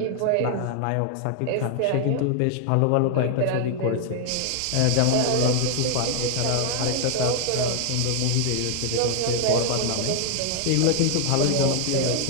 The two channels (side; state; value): both; different; correlation 0.00